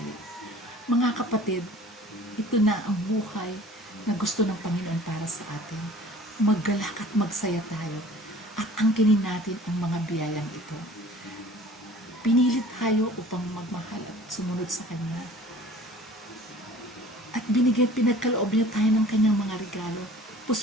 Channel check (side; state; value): both; normal; correlation 0.47